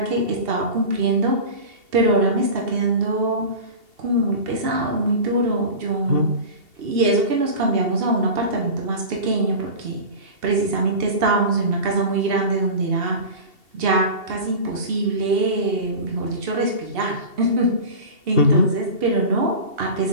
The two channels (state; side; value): late; left; 2.7 ms